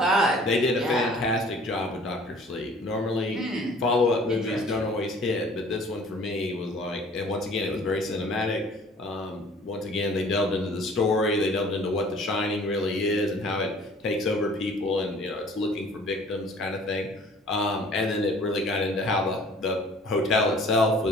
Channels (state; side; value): normal; both; correlation 0.52